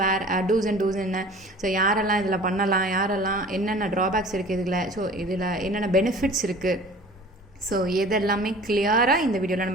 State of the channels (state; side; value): normal; both; correlation 0.44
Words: டூஸ் என்ன, ஸோ யாரெல்லாம் இதில் பண்ணலாம், யாரெல்லாம் என்னென்ன ட்ராபேக்ஸ் இருக்குது இதில், ஸோ இதில் என்னென்ன பெனிஃபிட்ஸ் இருக்குது, ஸோ இதெல்லாமே கிளியராக இந்த வீடியோவில்